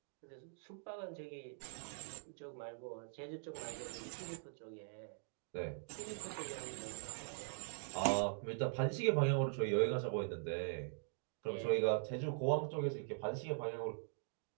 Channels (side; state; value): left; silent; digital silence